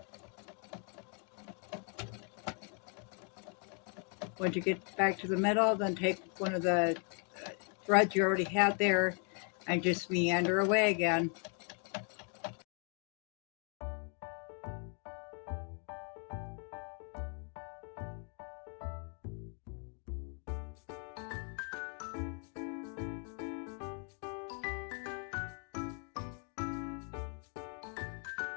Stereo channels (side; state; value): right; quieter; 39.9 dB